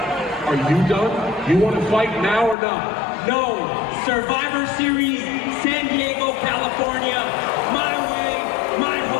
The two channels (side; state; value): right; drops out; at 2.6 s